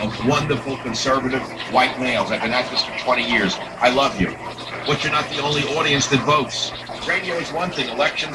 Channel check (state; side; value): identical; both; correlation 1.00